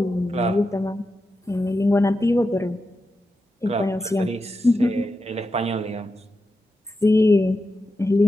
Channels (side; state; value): both; normal; correlation 0.89